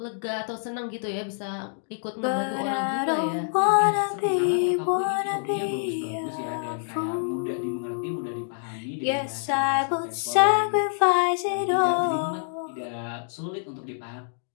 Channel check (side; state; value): right; silent; digital silence